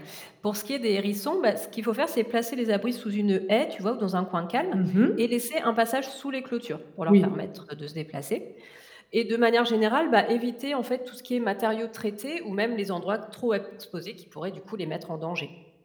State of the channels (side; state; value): both; identical; correlation 1.00